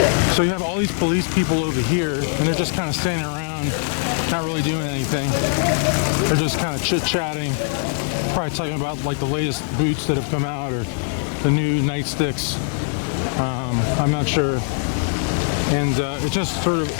So you have all these police people over here, and they're just kind of standing around, not really doing anything. They're just kind of chit-chatting, probably talking about like the latest boots that have come out or the new nightsticks. I'm not sure. And it just sort of,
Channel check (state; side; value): silent; right; digital silence